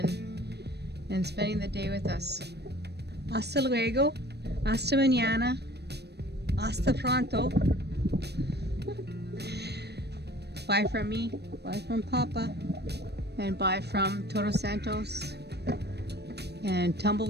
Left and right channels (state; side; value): late; left; 0.48 ms